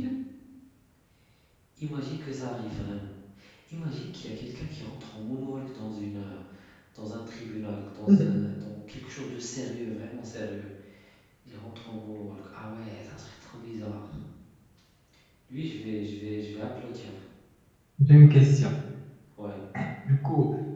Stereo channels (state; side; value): identical; both; correlation 1.00